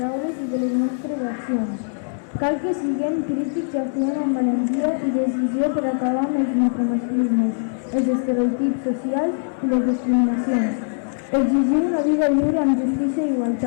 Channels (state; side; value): silent; right; digital silence